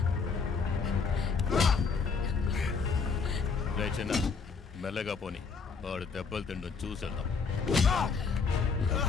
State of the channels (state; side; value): quieter; right; 5.1 dB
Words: చిన్న మెల్లగా పోని. వాడు దెబ్బలు తిండు చూసేద్దాం.